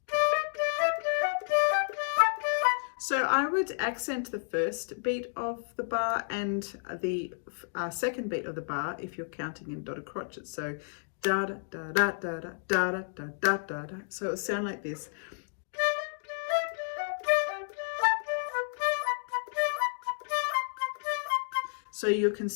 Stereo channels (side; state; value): right; silent; digital silence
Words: So I would accent the first beat of the bar and the second beat of the bar if you're counting in dotted crotchets. So da da da da da da da da da da da. So it'll sound like this. So you're